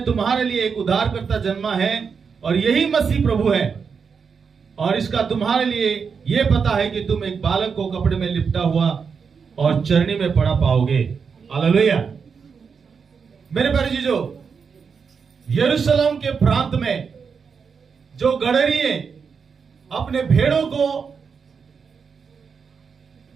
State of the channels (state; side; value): quieter; left; 5.9 dB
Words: तुम्हारे लिए एक उद्धारकर्ता जन्मा है और यही मसीह प्रभु है। और इसका तुम्हारे लिए यह पता है कि तुम एक बालक को कपड़े में लिपटा हुआ और चरनी में पड़ा पाओगे। हालेलुया। मेरे प्यारे जीजो, यरूशलेम के प्रांत में जो गडरिये अपने भेड़ों को